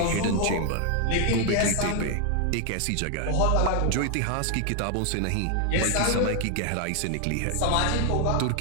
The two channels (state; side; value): different; both; correlation 0.00